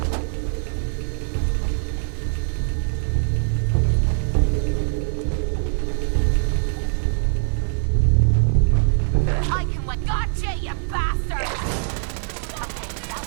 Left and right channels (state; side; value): silent; left; digital silence